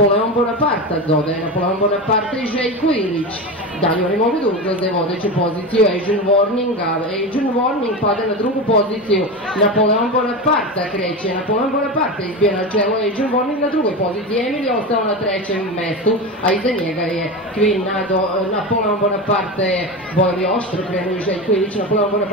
Bonaparte dodaje Napoleon Bonaparte i Željko Ilić. Dalje oni mogu da ugroze vodeću poziciju Adrian Warning, a Adrian Warning pada na drugu poziciju. Napoleon Bonaparte kreće, Napoleon Bonaparte izbija na čelo, Adrian Warning na drugoj poziciji. Emil je ostao na trećem mestu, a iza njega je Kvinado. Napoleon Bonaparte je bojali oštro, krenuo i Željko Ilić. Napoleon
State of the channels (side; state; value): both; normal; correlation 0.22